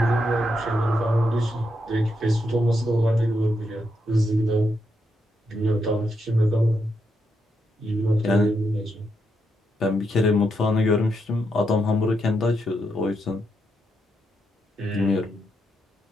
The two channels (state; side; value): normal; both; correlation 0.82